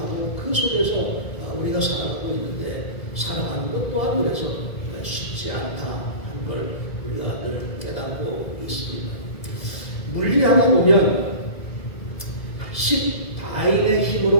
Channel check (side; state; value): right; late; 1.7 ms